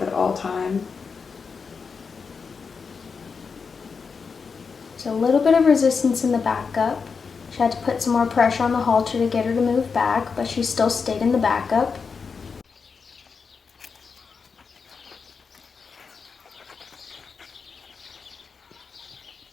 at all times. So a little bit of resistance in the backup. She had to put some more pressure on the halter to get her to move back, but she still stayed in the backup.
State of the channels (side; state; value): right; quieter; 5.4 dB